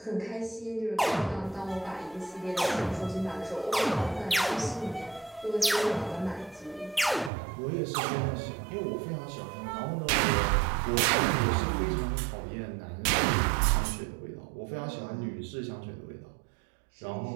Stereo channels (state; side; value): drops out; left; at 7.3 s